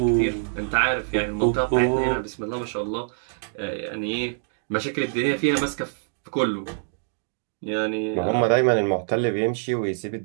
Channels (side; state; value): left; silent; digital silence